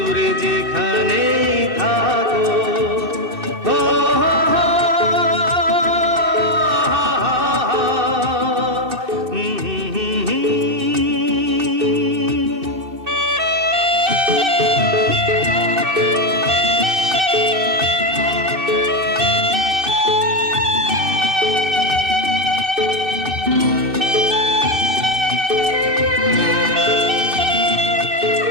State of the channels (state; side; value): late; left; 2.6 ms